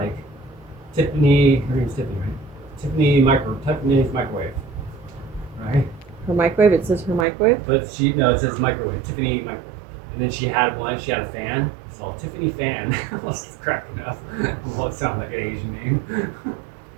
Tiffany. Her name's Tiffany, right? Tiffany's microwave, right? Her microwave. It says her microwave. But it says microwave. Tiffany microwave. And then she had one. She had a fan. It's called Tiffany Fan. I was cracking up. Well, it sounds like an Asian name.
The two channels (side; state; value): left; drops out; at 7.2 s